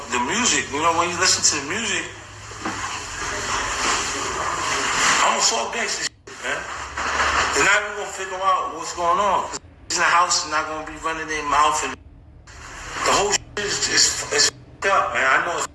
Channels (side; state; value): both; identical; correlation 1.00